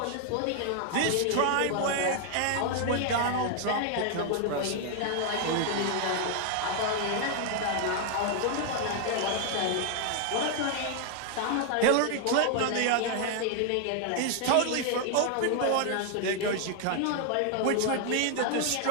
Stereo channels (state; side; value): different; both; correlation 0.00